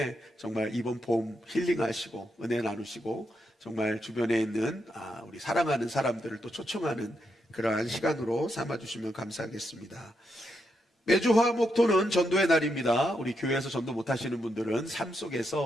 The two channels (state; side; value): normal; both; correlation 0.81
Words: 정말 이번 봄 힐링하시고 은혜 나누시고 정말 주변에 있는 우리 사랑하는 사람들을 또 초청하는 그러한 시간으로 삼아주시면 감사하겠습니다. 매주 화목토는 전도의 날입니다. 우리 교회에서 전도 못하시는 분들은 삶